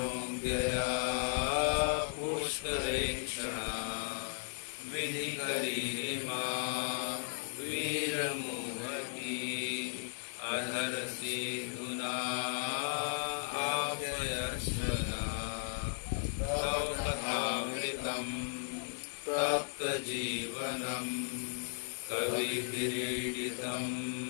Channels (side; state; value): right; silent; digital silence